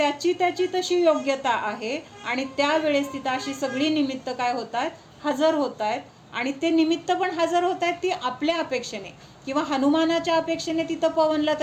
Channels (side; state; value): both; identical; correlation 1.00